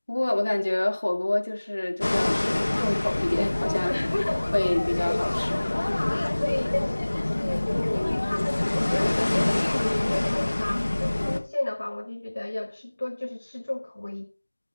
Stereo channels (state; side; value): inverted; both; correlation -1.00